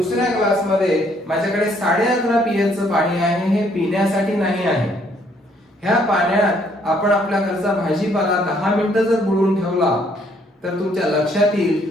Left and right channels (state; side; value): normal; both; correlation 0.66